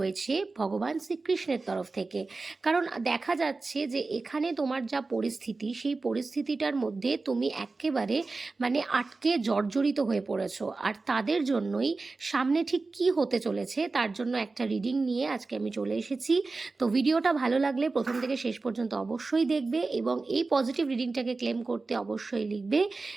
ভগবান শ্রীকৃষ্ণের তরফ থেকে। কারণ দেখা যাচ্ছে যে এখানে তোমার যা পরিস্থিতি, সেই পরিস্থিতিটার মধ্যে তুমি একেবারে আটকে জর্জরিত হয়ে পড়েছো, আর তাদের জন্যই সামনে ঠিক কি হতে চলেছে তার জন্য একটা রিডিং নিয়ে আজকে আমি চলে এসেছি। তো ভিডিওটা ভালো লাগলে প্রথম থেকে শেষ পর্যন্ত অবশ্যই দেখবে এবং এই পজিটিভ রিডিংটাকে ক্লেম করতে অবশ্যই লিখবে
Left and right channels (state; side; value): quieter; left; 3.8 dB